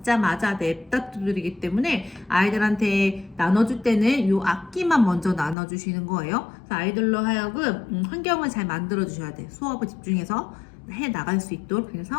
냅다 두드리기 때문에 아이들한테 나눠줄 때는 이 악기만 먼저 나눠주시는 거예요. 그래서 아이들로 하여금 환경을 잘 만들어 주셔야 돼요. 수업을 집중해서 해 나갈 수 있도록.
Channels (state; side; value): drops out; right; at 5.6 s